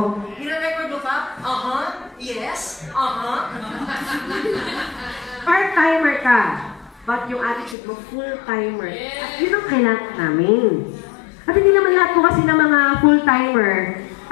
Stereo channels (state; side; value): drops out; right; at 7.8 s